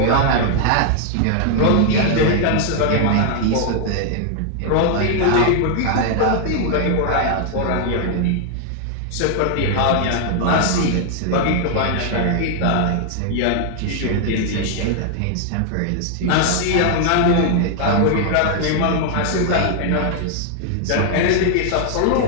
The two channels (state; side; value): different; both; correlation 0.00